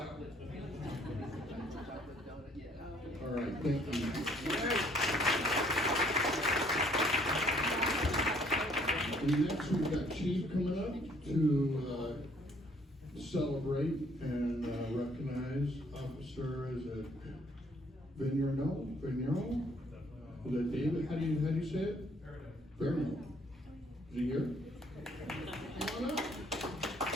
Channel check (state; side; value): normal; both; correlation 0.62